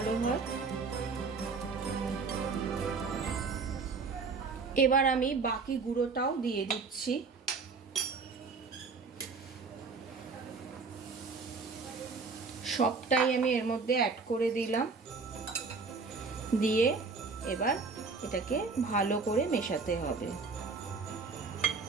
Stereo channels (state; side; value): quieter; left; 4.5 dB